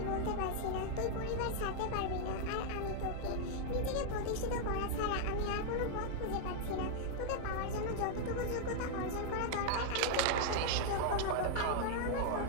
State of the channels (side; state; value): both; different; correlation -0.01